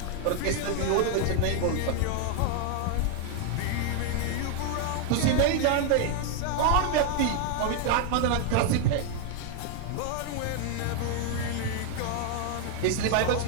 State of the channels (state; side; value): different; both; correlation 0.00